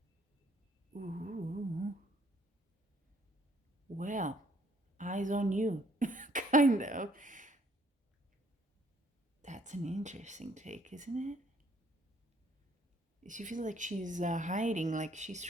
Ooh. Well, eyes on you, kind of. That's an interesting take, isn't it? She feels like she's hiding, like she's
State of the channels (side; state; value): both; normal; correlation 0.64